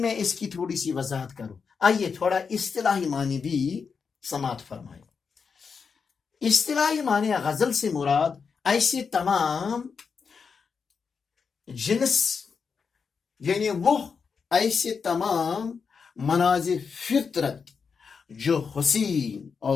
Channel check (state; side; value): quieter; right; 5.7 dB